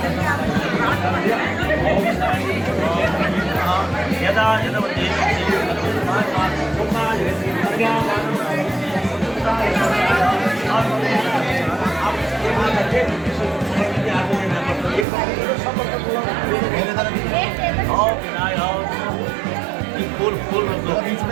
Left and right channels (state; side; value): drops out; left; at 15.1 s